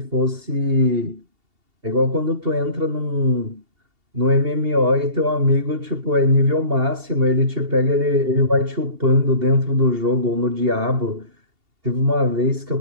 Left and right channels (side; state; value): left; late; 2.8 ms